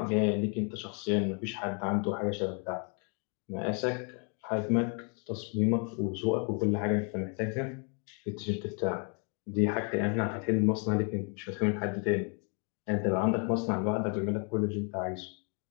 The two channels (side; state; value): right; quieter; 38.4 dB